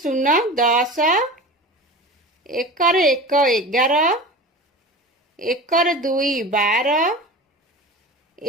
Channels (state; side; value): normal; both; correlation 0.33